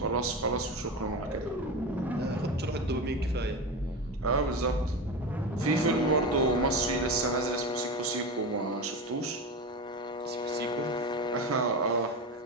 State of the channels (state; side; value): normal; both; correlation 0.22